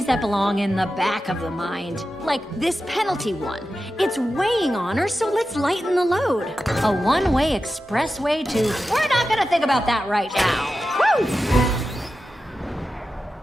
that belong in the back of the mind. Like this penalty one. It's weighing on her, so let's lighten the load. A one-way expressway to, we're not gonna think about that right now. Woo!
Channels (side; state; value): both; normal; correlation 0.92